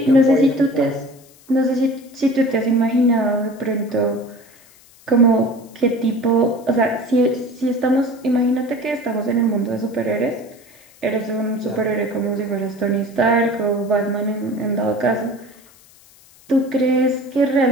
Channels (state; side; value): noise; left; hiss, 27 dB below the sound